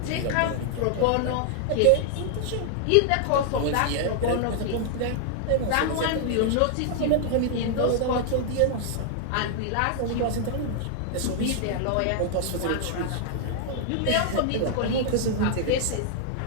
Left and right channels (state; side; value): different; both; correlation -0.01